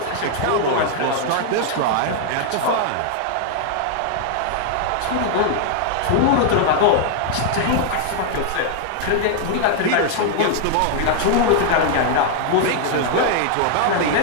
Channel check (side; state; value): both; different; correlation 0.00